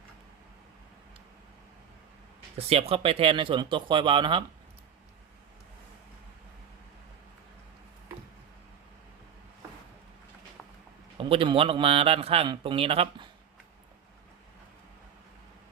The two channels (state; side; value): quieter; left; 8.5 dB